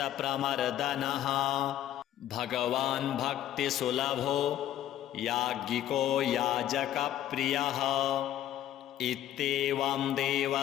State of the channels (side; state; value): right; quieter; 12.1 dB